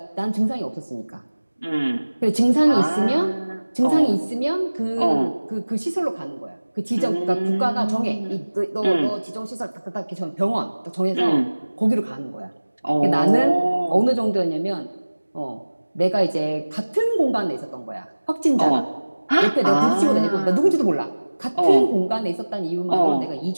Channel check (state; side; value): inverted; both; correlation -1.00